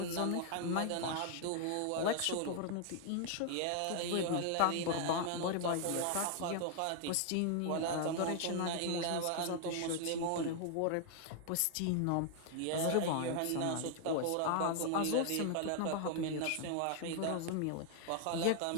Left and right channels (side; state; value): both; different; correlation 0.00